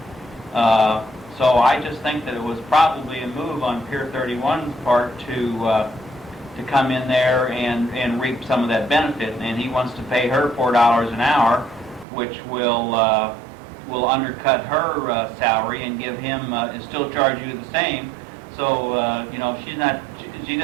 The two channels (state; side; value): drops out; left; at 12.1 s